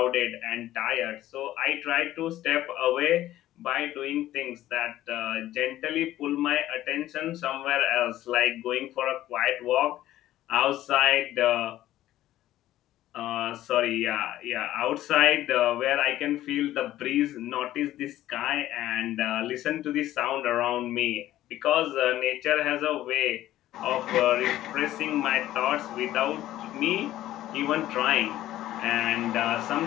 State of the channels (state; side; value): quieter; right; 14.1 dB